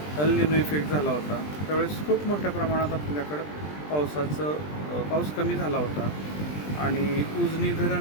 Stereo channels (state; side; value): late; right; 20 ms